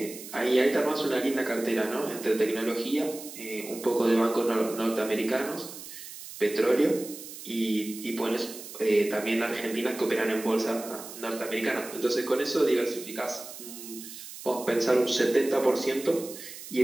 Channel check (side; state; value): right; noise; hiss, 13 dB below the sound